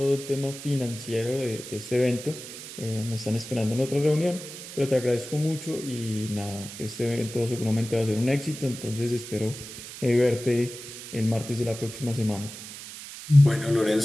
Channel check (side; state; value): right; noise; hiss, 12 dB below the sound